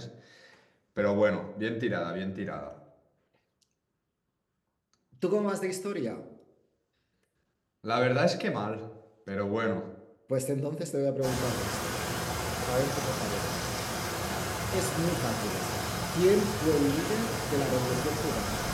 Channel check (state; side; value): identical; both; correlation 1.00